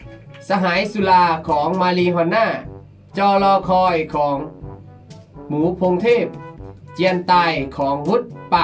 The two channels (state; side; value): identical; both; correlation 1.00